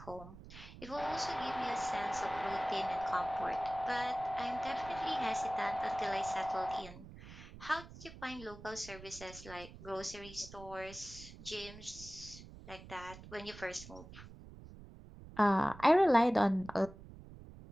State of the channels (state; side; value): noise; right; rumble, 16 dB below the sound